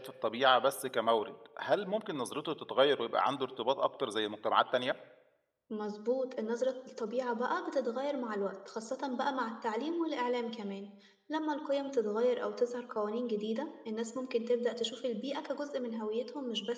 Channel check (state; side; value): identical; both; correlation 1.00